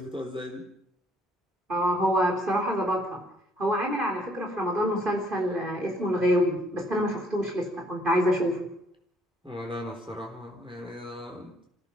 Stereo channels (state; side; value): normal; both; correlation 0.65